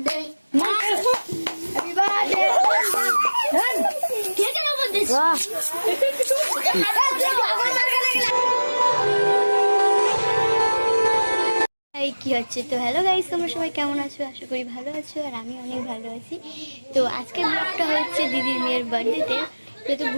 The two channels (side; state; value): both; inverted; correlation -1.00